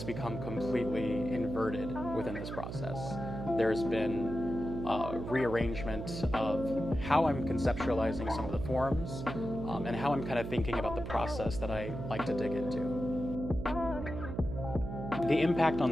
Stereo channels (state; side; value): noise; right; hum, 7 dB below the sound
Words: become completely inverted within this process. There's been rearrangement of how I'm conceptualizing some of the forms, and how I'm kind of thinking about the process that I like to dig into. The impact on